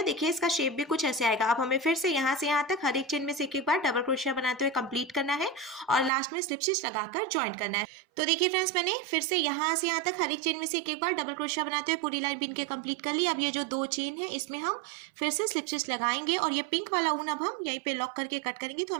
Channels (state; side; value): drops out; left; at 6.1 s